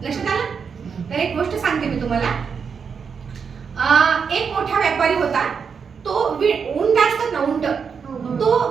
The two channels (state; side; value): quieter; left; 6.2 dB